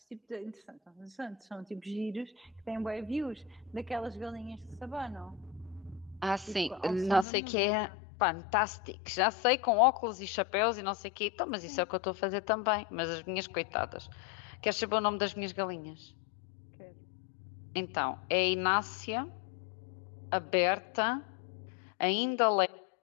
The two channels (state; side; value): drops out; right; at 7.2 s